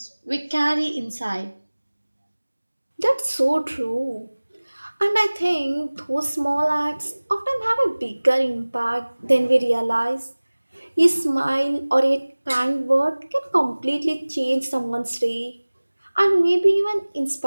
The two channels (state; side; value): inverted; both; correlation -1.00